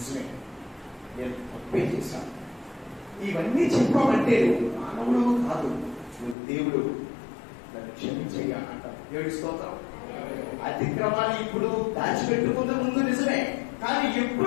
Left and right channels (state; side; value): drops out; right; at 6.4 s